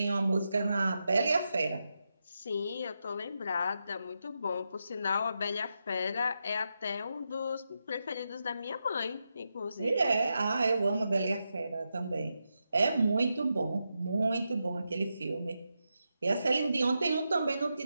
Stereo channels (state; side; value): inverted; both; correlation -0.86